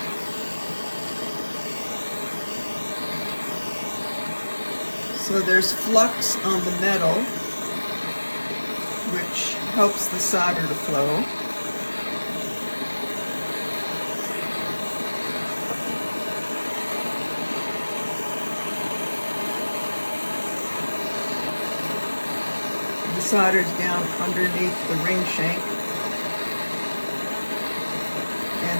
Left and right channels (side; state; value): both; inverted; correlation -1.00